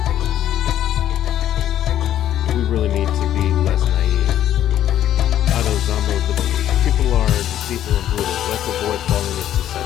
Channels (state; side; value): quieter; right; 11.5 dB